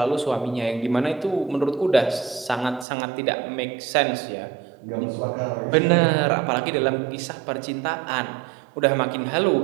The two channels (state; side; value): drops out; left; at 2.9 s